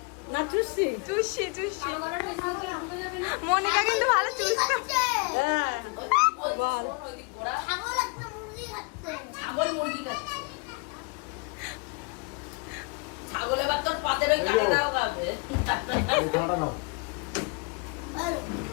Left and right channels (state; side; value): quieter; right; 31.6 dB